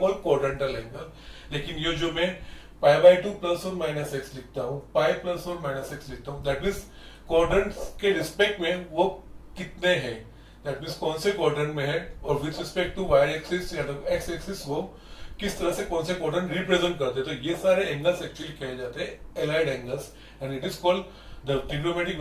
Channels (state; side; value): identical; both; correlation 1.00